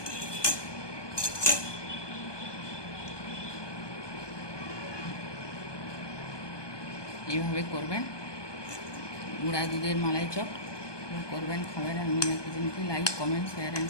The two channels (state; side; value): late; right; 1.2 ms